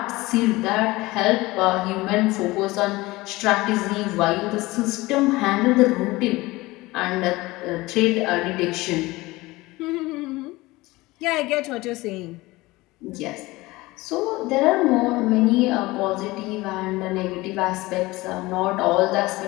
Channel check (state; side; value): quieter; right; 20.5 dB